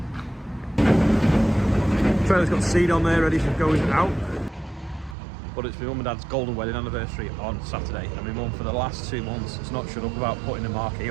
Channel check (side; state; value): left; drops out; at 5.2 s